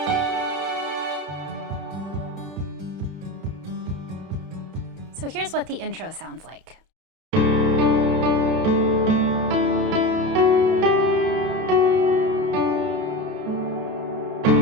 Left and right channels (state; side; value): late; left; 31 ms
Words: So here's what the intro sounds like.